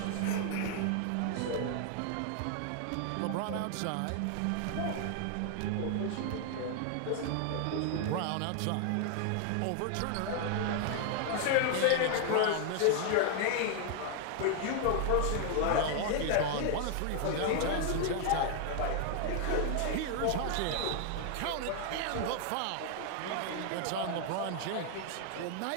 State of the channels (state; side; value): different; both; correlation 0.00